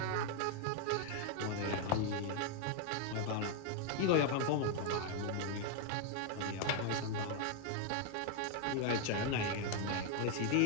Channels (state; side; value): different; both; correlation 0.00